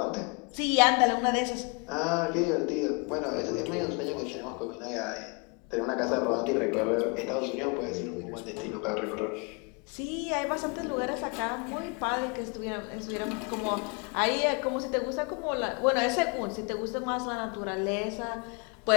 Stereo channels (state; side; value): quieter; right; 33.2 dB